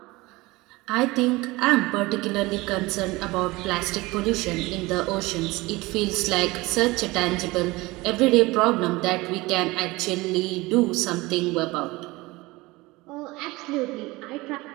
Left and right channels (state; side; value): quieter; left; 21.6 dB